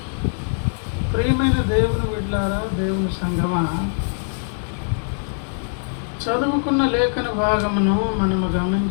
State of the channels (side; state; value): right; silent; digital silence